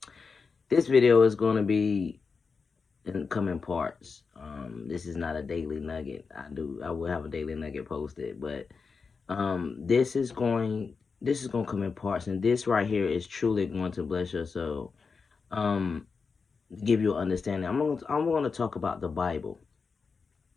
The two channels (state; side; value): quieter; right; 5.0 dB